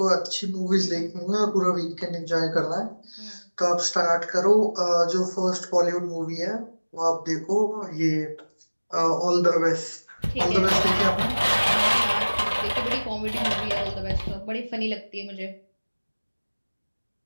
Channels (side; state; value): both; inverted; correlation -1.00